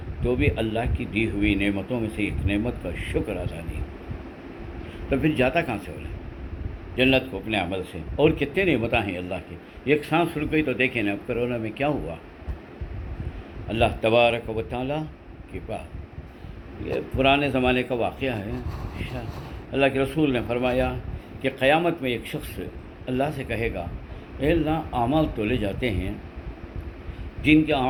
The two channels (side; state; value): both; identical; correlation 1.00